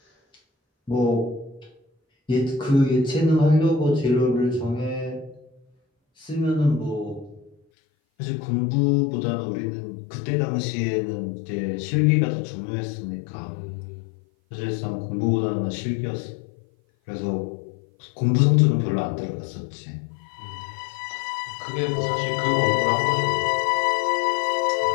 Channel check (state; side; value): drops out; right; at 7.6 s